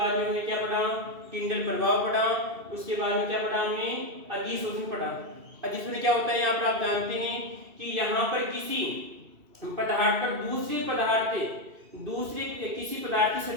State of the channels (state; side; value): late; left; 2.7 ms